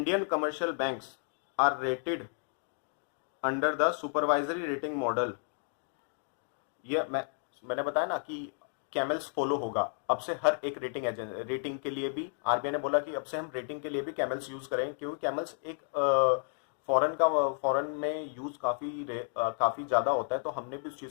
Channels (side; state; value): right; silent; 56 dB below the other